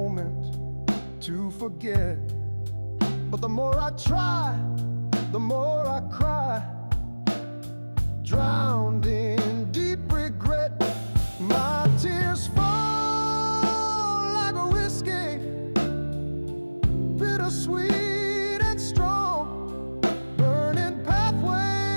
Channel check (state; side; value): inverted; both; correlation -1.00